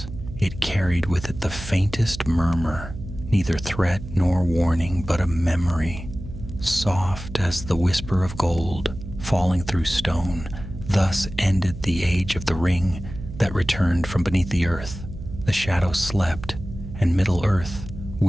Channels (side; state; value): right; noise; hum, 11 dB below the sound